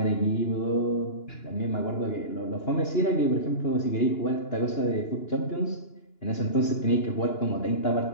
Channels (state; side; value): late; right; 2.9 ms